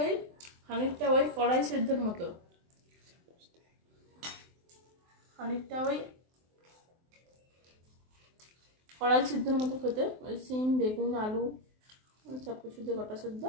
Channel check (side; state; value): left; late; 23 ms